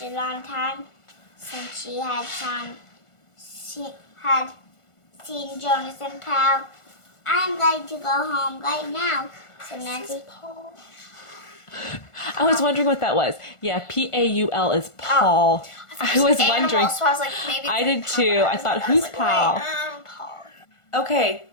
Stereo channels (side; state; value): right; late; 1.4 ms